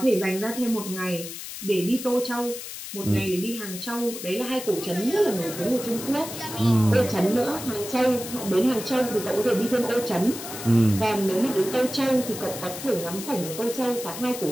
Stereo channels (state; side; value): noise; left; hiss, 10 dB below the sound